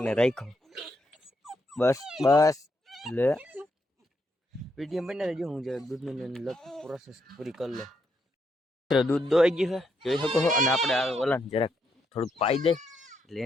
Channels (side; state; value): both; normal; correlation 0.78